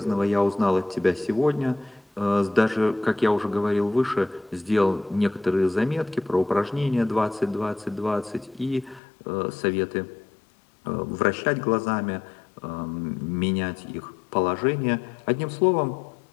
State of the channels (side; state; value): right; drops out; at 9.0 s